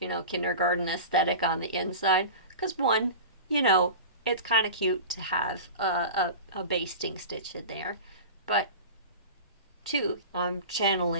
know, kindergarten aesthetic on the inside, because one, you know, it's kind of cute to have a basting stitch in there. But 2, I'm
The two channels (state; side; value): inverted; both; correlation -0.31